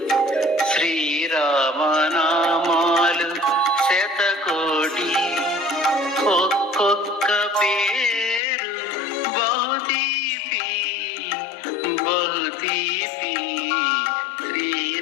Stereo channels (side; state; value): right; drops out; at 8.4 s